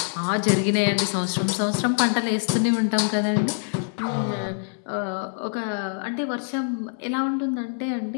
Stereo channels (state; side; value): silent; right; digital silence